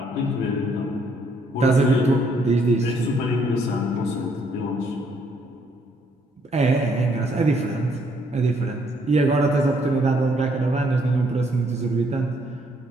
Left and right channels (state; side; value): normal; both; correlation 0.69